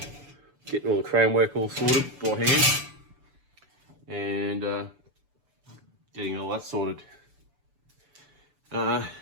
getting all the chrome work all sorted by hand, and getting all that sorted. The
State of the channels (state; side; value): late; left; 6.9 ms